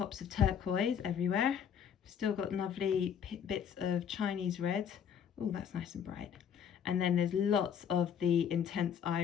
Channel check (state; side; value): quieter; right; 8.1 dB